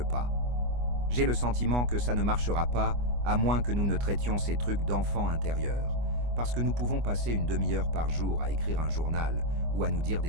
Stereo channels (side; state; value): left; late; 25 ms